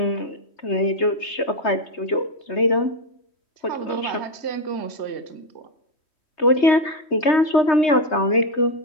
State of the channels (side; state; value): right; late; 3.1 ms